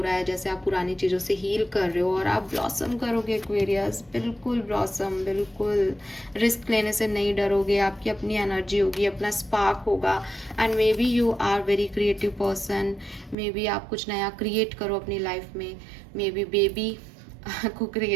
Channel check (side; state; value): left; drops out; at 13.4 s